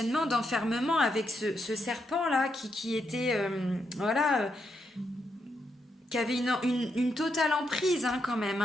d'enfermement avec ce serpent-là qui était... qui avait une totale emprise quand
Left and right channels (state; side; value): normal; both; correlation 0.81